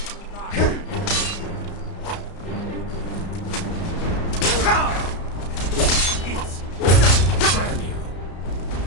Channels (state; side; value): late; right; 33 ms